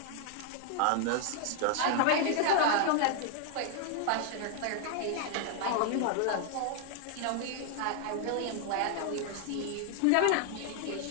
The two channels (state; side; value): different; both; correlation 0.00